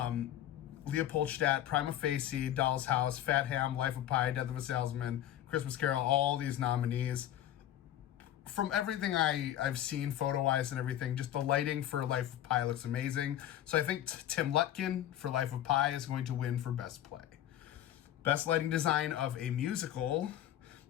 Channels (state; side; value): quieter; right; 11.9 dB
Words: Leopoldstadt, Prima Facie, Doll's House, Fat Ham, Life of Pi, Death of a Salesman, Christmas Carol, all these nominees. From everything I've seen photo-wise and everything, just the lighting for Life of Pi looks amazing. So I think Tim Lutkin for Life of Pi is going to win for Best Play. Best lighting design of a musical.